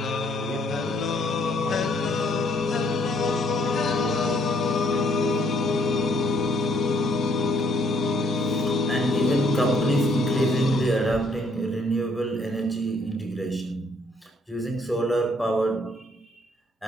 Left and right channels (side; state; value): both; normal; correlation 0.66